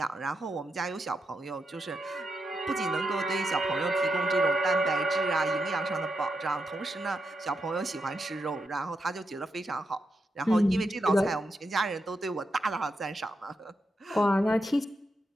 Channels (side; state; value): both; normal; correlation 0.85